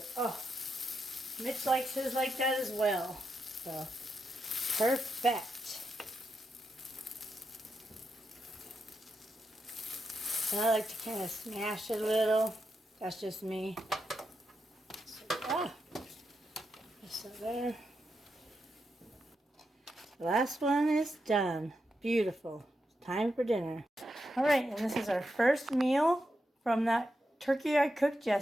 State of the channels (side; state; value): both; normal; correlation 0.85